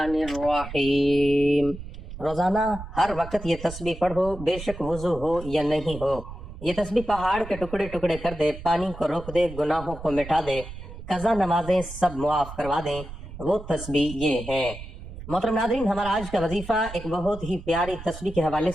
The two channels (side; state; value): right; noise; rumble, 12 dB below the sound